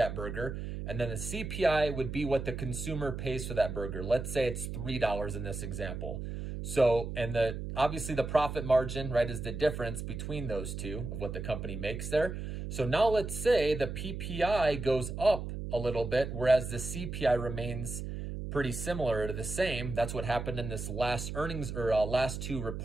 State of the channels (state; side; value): noise; right; hum, 6 dB below the sound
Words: burger. And then the CPI would be what the consumer pays for that burger. Let's say it's $3 in this example. So, and obviously the profit margin, right, is the difference between those two of what the company makes there. So now let's say the PPI goes up a little bit, whereas the CPI remains pretty similar to the same. That's what happened in this last earnings or last two